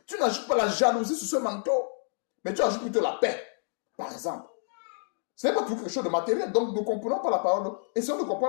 Tu n'ajoutes pas la jalousie sur ce manteau. Mais tu ajoutes plutôt la paix, par exemple. Ce n'est pas tout quelque chose de matériel. Donc, nous ne comprenons pas la parole. Essayons de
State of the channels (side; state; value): right; silent; digital silence